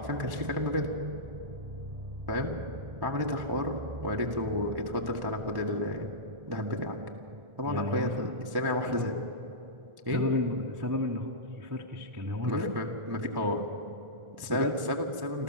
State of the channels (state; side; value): late; left; 1.1 ms